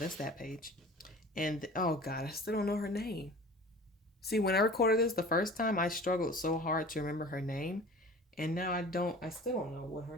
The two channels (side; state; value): both; normal; correlation 0.42